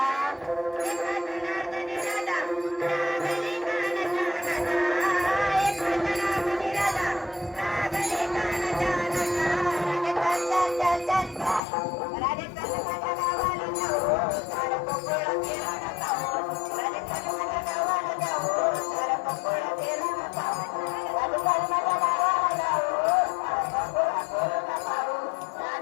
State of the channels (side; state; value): right; drops out; at 11.6 s